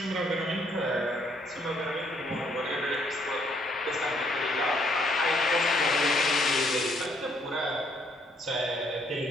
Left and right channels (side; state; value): both; normal; correlation 0.68